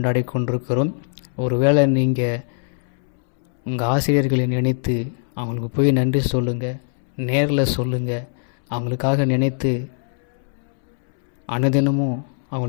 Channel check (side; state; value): right; silent; 65 dB below the other